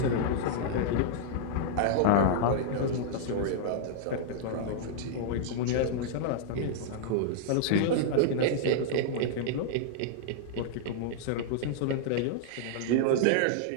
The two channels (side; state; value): both; different; correlation -0.01